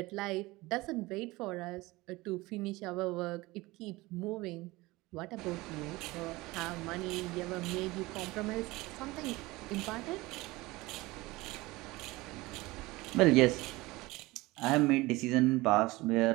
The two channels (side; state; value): left; quieter; 20.9 dB